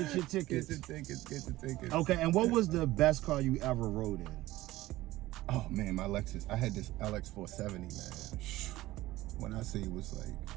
your tickets. Okay, and what was the best car you ever rode in? Oh man, my Lexus. I had this LX 470, man. When I say it was like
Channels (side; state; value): left; quieter; 17.0 dB